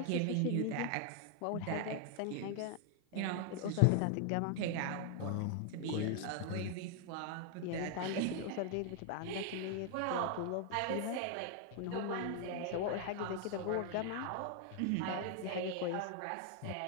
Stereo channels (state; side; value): different; both; correlation 0.00